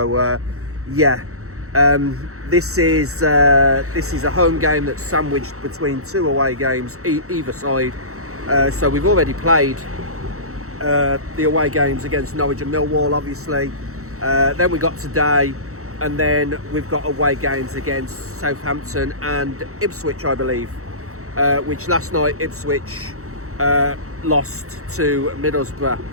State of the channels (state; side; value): late; left; 0.64 ms